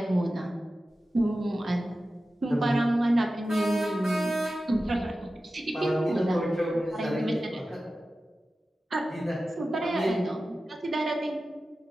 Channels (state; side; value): normal; both; correlation 0.94